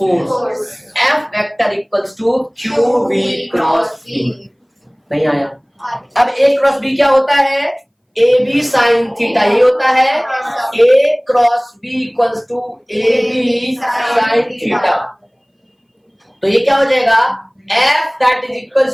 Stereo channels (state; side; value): identical; both; correlation 1.00